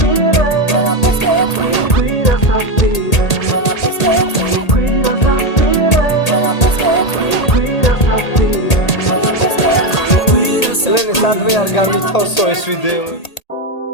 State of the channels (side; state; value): right; late; 1.8 ms